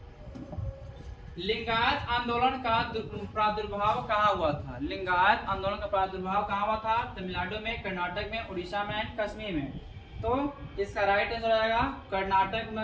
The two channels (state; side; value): identical; both; correlation 1.00